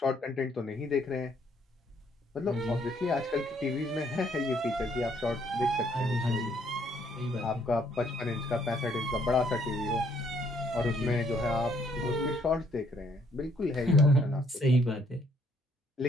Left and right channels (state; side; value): normal; both; correlation 0.67